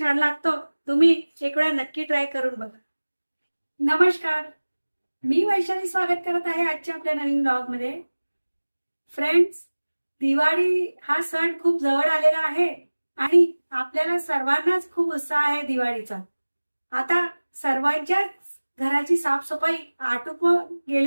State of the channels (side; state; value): both; inverted; correlation -1.00